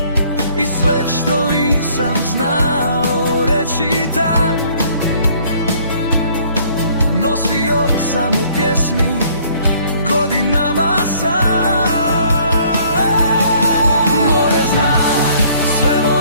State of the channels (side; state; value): both; inverted; correlation -0.59